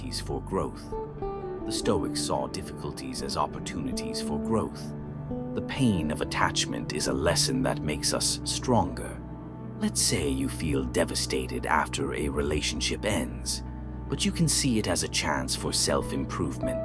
for growth. The Stoics saw difficulties as opportunities for growth. The pain of attachment is a lesson that makes us stronger. Let's say you feel devastated after a relationship ends, but you can see it as a chance for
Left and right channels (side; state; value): both; identical; correlation 1.00